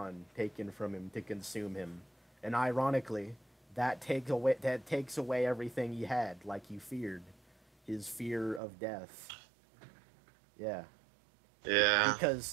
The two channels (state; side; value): drops out; left; at 8.6 s